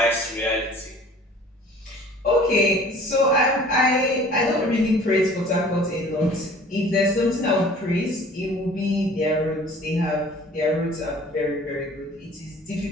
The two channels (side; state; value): both; normal; correlation 0.49